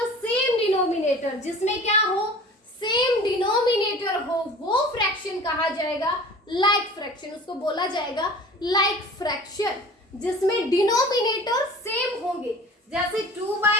same denominator, जिसमें क्या हो, सेम डिनोमिनेटर हो, वो फ्रैक्शन कहा जाएगा लाइक फ्रैक्शन, उसको बोला जाएगा लाइक फ्रैक्शन, जिसमें डिनोमिनेटर सेम होंगे, जैसे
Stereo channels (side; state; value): both; normal; correlation 0.42